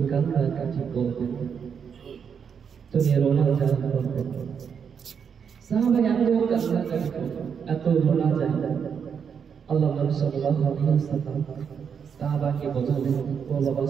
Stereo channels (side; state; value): left; quieter; 7.0 dB